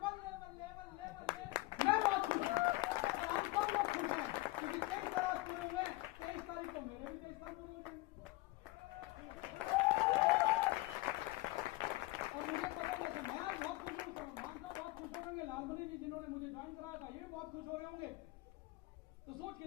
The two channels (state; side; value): quieter; right; 21.1 dB